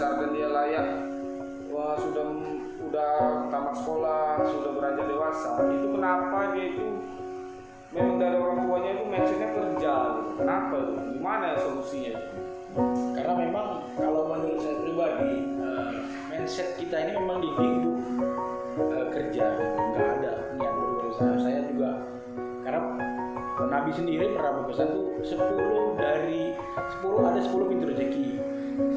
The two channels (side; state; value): both; identical; correlation 1.00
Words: dan dia layak, sudah tamat sekolah, sudah beranjak dewasa, itu kenapa dia itu memang dari orang tuanya itu mindsetnya kerja gitu. Kenapa itu? Gimana ya solusinya? Karena memang kalau menurut saya pribadi, mindset kita ini memang dididik kerja, gitu. Nggak ada niat berusaha. Saya juga karena Nabi sendiri pernah berpesan tuh 10 ada 10 pintu rezeki,